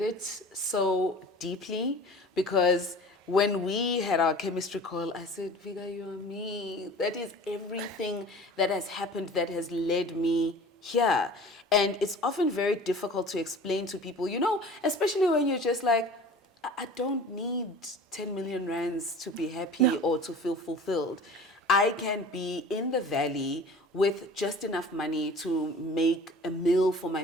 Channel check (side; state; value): both; normal; correlation 0.42